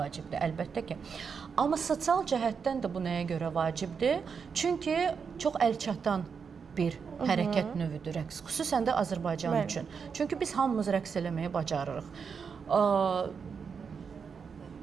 əlbəttə ki. Amma sosial cəhətdən də bu nəyə görə vacibdir? Çünki çox əlçatan bir hərəkət növüdür rəqs, xüsusən də Azərbaycan üçün. Çünki biz hamımız rəqs eləməyi bacarırıq.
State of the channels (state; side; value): quieter; left; 6.0 dB